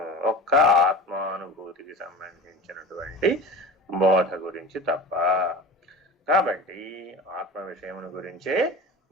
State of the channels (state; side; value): normal; both; correlation 0.34